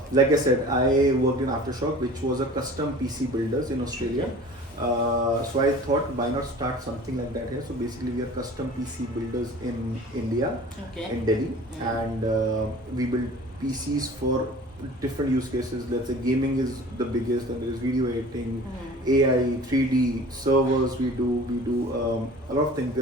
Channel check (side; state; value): both; normal; correlation 0.43